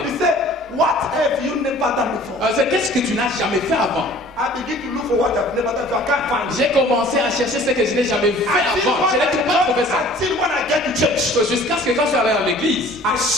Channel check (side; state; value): both; normal; correlation 0.50